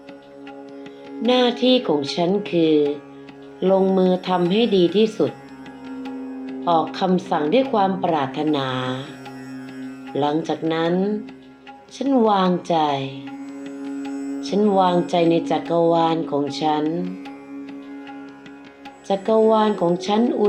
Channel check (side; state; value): both; identical; correlation 1.00